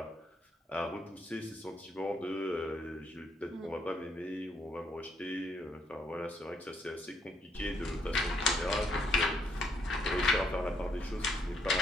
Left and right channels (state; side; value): normal; both; correlation 0.72